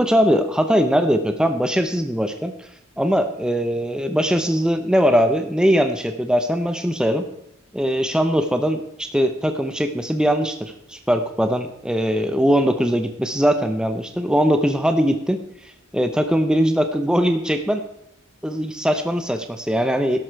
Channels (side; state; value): both; normal; correlation 0.84